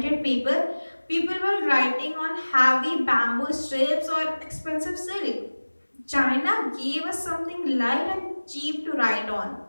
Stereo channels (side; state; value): both; inverted; correlation -1.00